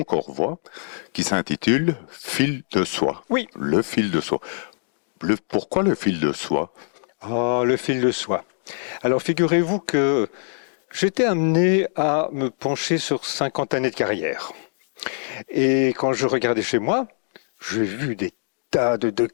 Corps Voix qui s'intitule Fil de soie. Oui. Le fil de soie. Pourquoi le fil de soie? Ah, le fil de soie. Alors figurez-vous que j'étais amené à me pencher sur 50 années de carrière. Et quand je regardais chez moi, j'ai vu des tas de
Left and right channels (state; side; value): silent; right; digital silence